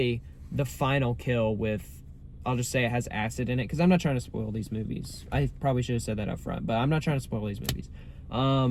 the final kill with, I'll just say it has acid in it, because I'm not trying to spoil these movies. I probably should have said that up front, but I'm not trying to spoil these movies.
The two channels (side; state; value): both; identical; correlation 1.00